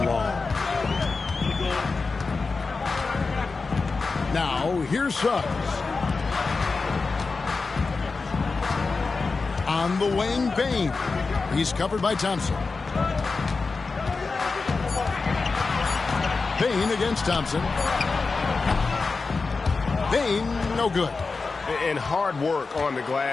Now, here's Suggs. On the wing, Bane. He's covered by Thompson. Bane against Thompson. Bane, no good. And hard work on the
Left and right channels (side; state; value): right; quieter; 4.2 dB